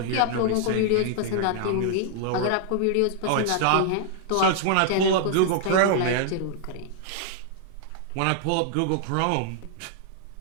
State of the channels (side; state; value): both; different; correlation -0.01